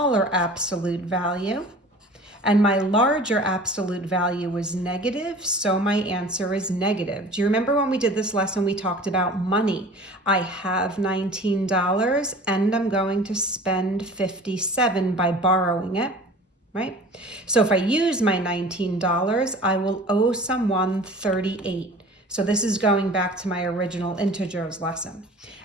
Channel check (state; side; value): normal; both; correlation 0.42